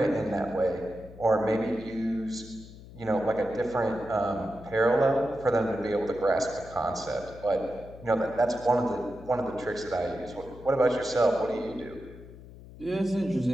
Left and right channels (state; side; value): noise; left; hum, 17 dB below the sound